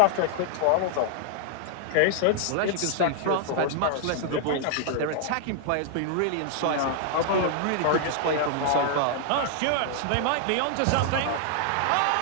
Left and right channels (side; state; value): both; different; correlation -0.01